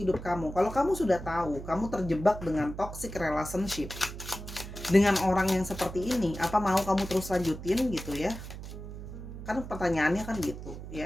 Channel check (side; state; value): right; noise; hum, 10 dB below the sound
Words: kamu. Kalau kamu sudah tahu kamu terjebak dengan toxic relationship dengan orang yang seperti ini, apa mau kamu terus lanjutin gitu ya? Kan pertanyaannya kan gitu